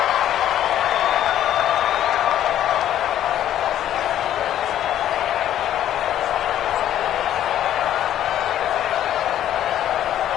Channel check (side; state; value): right; quieter; 11.5 dB